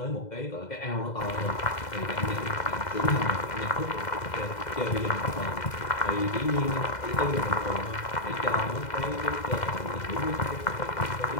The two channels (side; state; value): right; late; 2.0 ms